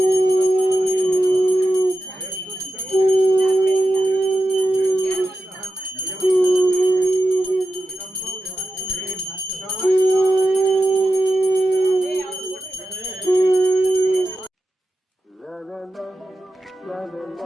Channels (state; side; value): normal; both; correlation 0.91